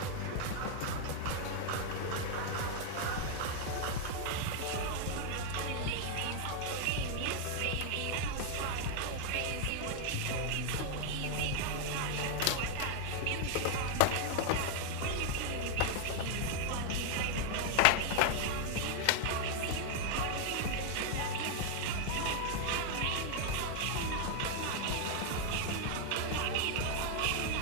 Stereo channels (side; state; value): both; different; correlation 0.00